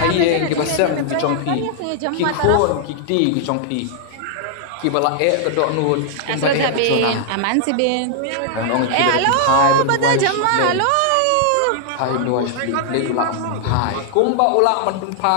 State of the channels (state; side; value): different; both; correlation 0.00